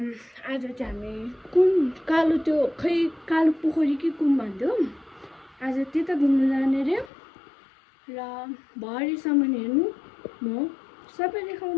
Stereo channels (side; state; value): right; drops out; at 7.1 s